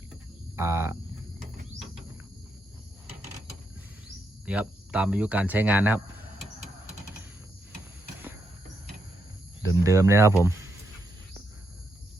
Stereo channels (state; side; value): normal; both; correlation 0.81